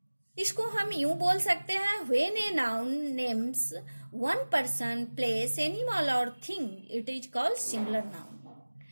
इसको हम यूं बोल सकते हैं, when a noun names one person, place, animal और thing, it is called singular noun.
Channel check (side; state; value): both; inverted; correlation -1.00